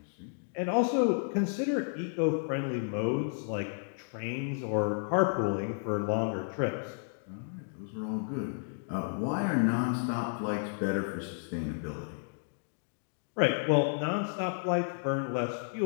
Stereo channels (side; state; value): right; silent; digital silence